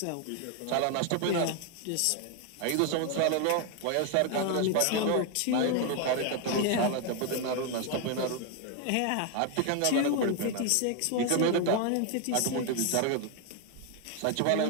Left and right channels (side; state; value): both; different; correlation 0.01